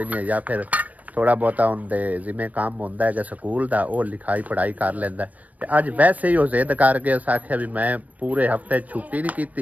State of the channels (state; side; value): late; left; 0.072 ms